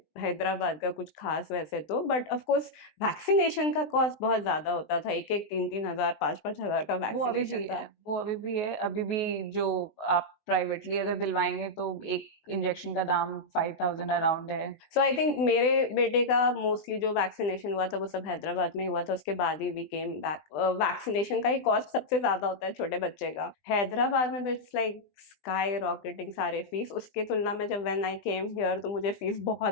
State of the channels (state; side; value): late; right; 20 ms